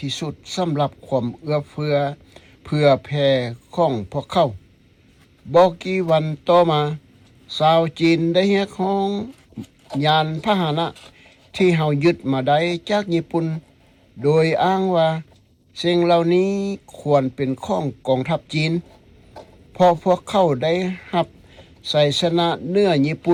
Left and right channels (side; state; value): both; identical; correlation 1.00